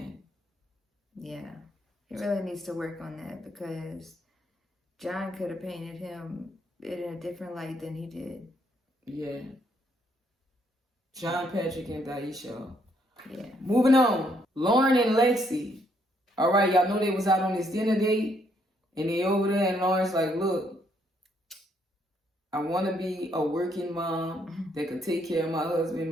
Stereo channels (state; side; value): normal; both; correlation 0.71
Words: Yeah. He really needs to work on that because John could have painted him in a different light than he did. Yeah. John, Patrick, and Daisha. Yeah. Moving on. Lauren and Lexi. All right, y'all know they was out on this dinner date. And they over there and Lauren's like, look, I want to be a working mom that could take care of my husband,